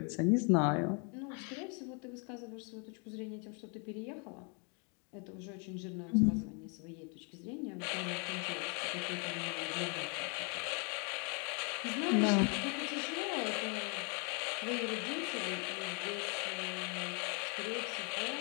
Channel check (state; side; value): quieter; right; 36.4 dB